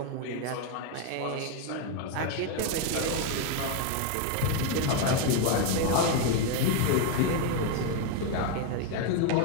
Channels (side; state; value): both; different; correlation 0.01